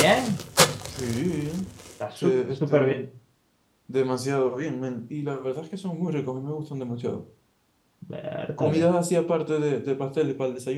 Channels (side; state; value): both; identical; correlation 1.00